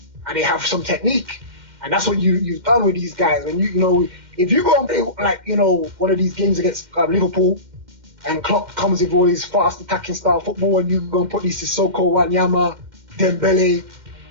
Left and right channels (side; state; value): left; late; 2.1 ms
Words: and they have some technique. And that's what you've done with these guys. When if you go and play one of these games against Liverpool, and Klopp comes with all his fast attacking style football, and you go and put these Sissoko, Wanyama, Dembele,